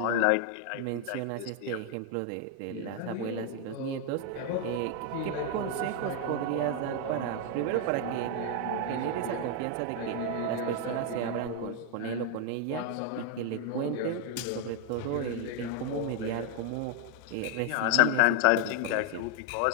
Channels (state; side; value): different; both; correlation 0.00